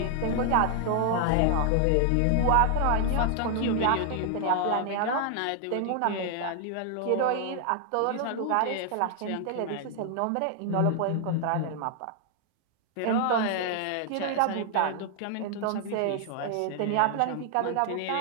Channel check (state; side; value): different; both; correlation 0.00